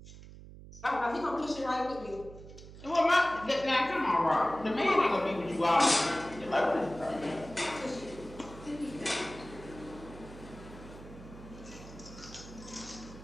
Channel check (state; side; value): noise; right; hum, 16 dB below the sound